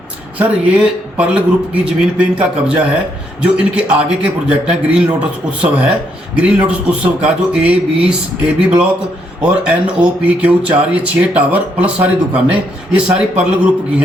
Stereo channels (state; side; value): normal; both; correlation 0.75